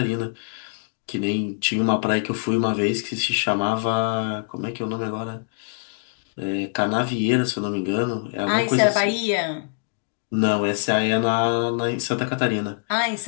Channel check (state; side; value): silent; right; digital silence